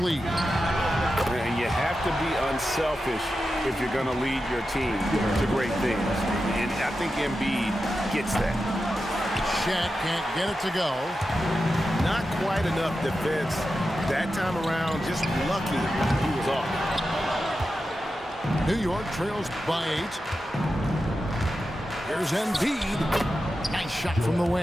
And you have to be unselfish if you're going to lead your team to great things. And I think Embiid gets that. Shaq can't get it to go. Not quite enough defense that time around. Just lucky he was off. New York trails by 8. Here's Embiid. Nice shot from the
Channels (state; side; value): normal; both; correlation 0.91